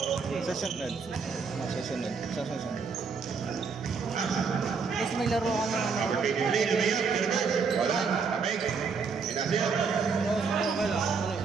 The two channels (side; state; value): left; quieter; 5.3 dB